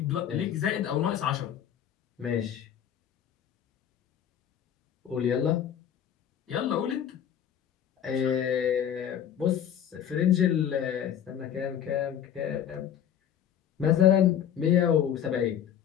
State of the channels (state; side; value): quieter; right; 9.5 dB